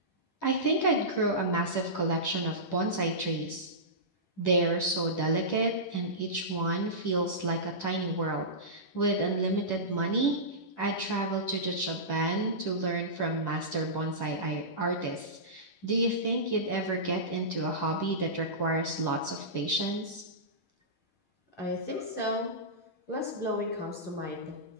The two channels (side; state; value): right; late; 11 ms